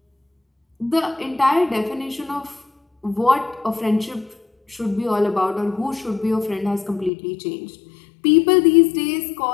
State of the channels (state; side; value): drops out; right; at 7.1 s